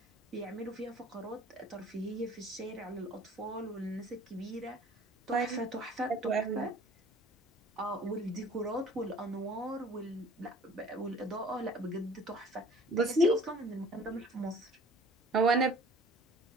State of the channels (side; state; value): both; normal; correlation 0.50